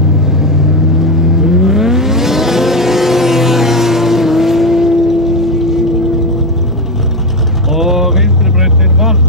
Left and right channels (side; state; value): both; normal; correlation 0.12